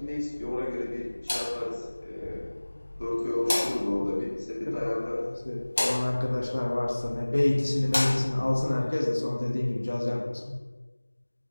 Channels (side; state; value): both; inverted; correlation -1.00